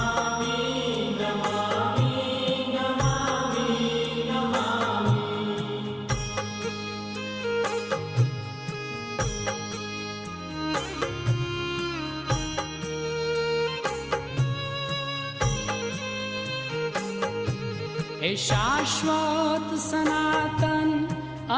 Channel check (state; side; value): identical; both; correlation 1.00